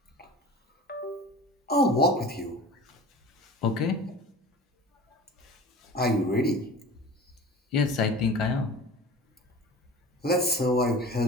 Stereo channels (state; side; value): normal; both; correlation 0.39